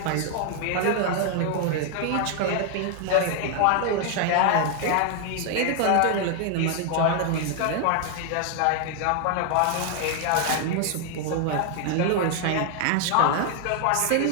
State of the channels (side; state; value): both; different; correlation 0.00